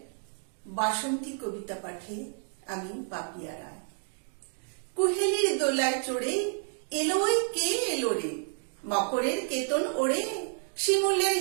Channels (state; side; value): silent; left; 58 dB below the other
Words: বাসন্তী কবিতা পাঠে আমি পাপিয়া রায়। কুহেলির দোলায় চড়ে এলো ওই কে এলো রে, মকরের কেতন ওড়ে শিমুলের